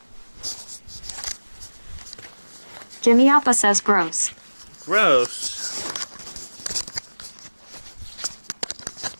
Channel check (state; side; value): inverted; both; correlation -1.00